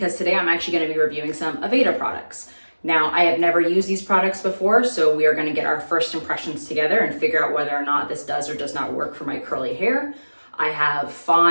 today I'm actually going to be reviewing some Aveda products. Now, I have never used these products before, so we are going to get our first impressions together and figure out whether or not this does or does not work for my curly hair. I have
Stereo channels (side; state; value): both; inverted; correlation -1.00